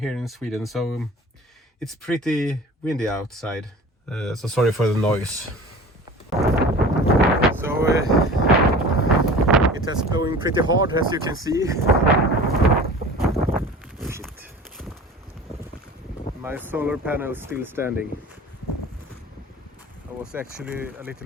in Sweden, so it's pretty windy outside. So sorry for the noise. So it is blowing pretty hard, as you can see. Shit. My solar panel is still standing. I was actually a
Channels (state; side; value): normal; both; correlation 0.40